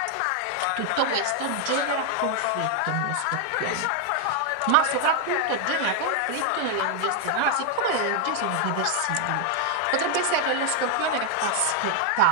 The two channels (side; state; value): both; different; correlation 0.00